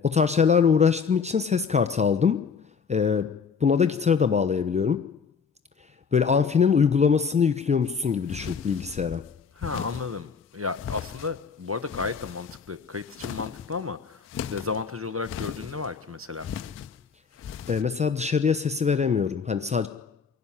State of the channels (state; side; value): quieter; right; 5.9 dB